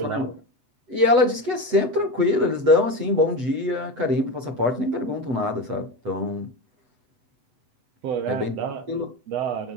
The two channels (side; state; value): left; late; 8.0 ms